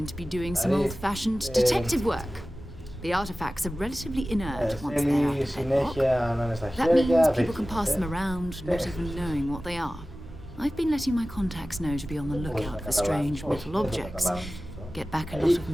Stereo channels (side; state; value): both; normal; correlation 0.96